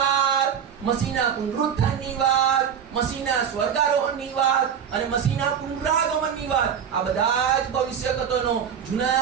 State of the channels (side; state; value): left; quieter; 8.0 dB